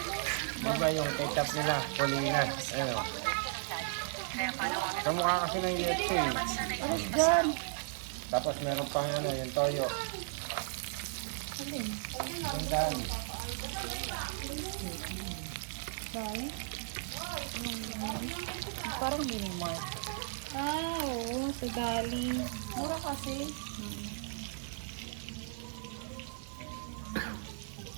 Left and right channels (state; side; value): silent; left; digital silence